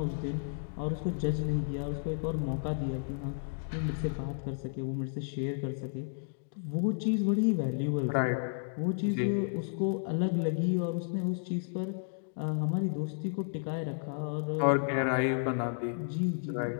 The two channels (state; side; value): silent; right; digital silence